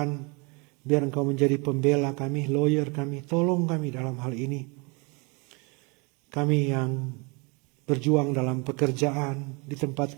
biar Engkau menjadi pembela kami, lawyer kami, tolong kami dalam hal ini. Kami yang berjuang dalam pekerjaan, di tempat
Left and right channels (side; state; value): left; quieter; 30.5 dB